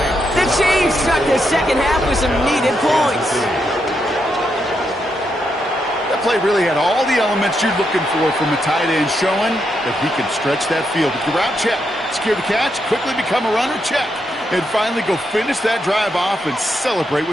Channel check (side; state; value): both; normal; correlation 0.81